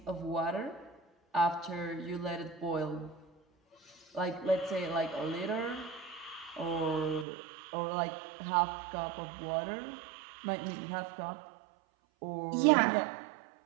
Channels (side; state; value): left; drops out; at 7.2 s